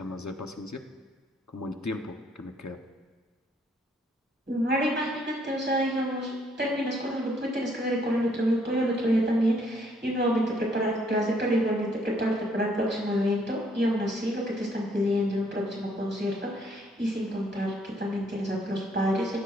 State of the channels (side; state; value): both; normal; correlation 0.67